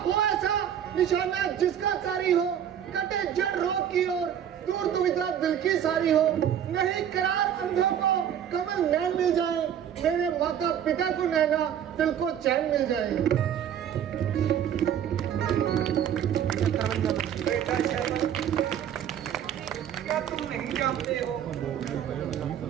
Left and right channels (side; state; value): left; quieter; 9.5 dB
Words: ऐसा निशाना जिसका कारी हो, कटे जड़ रोग की ओर, दूर दुविधा दिल की सारी हो। नहीं करार अंधों को कमल नैन मिल जाए, मेरे माता पिता को नैना दिल को चैन मिल जाए। बेटा श्रवण, क्या तुम नहीं जानते हो